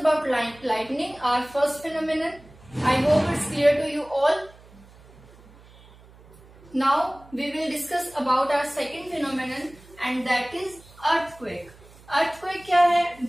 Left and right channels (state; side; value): noise; right; hum, 24 dB below the sound